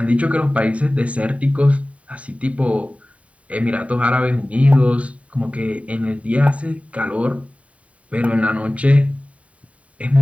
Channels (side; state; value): left; late; 0.066 ms